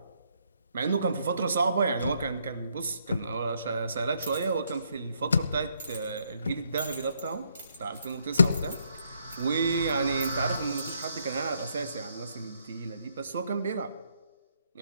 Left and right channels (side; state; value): both; inverted; correlation -0.73